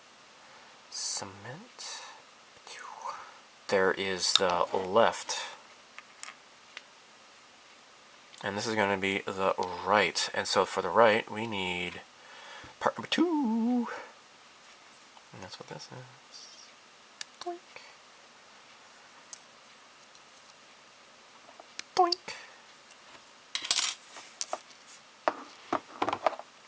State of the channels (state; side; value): identical; both; correlation 1.00